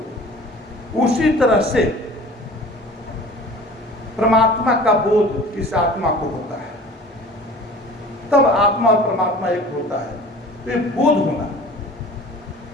उसी तरह से परमात्मा का बोध इस आत्मा को होता है, तब आत्मा और परमात्मा एक होता है। तो ये बोध होना,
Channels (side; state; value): both; normal; correlation 0.43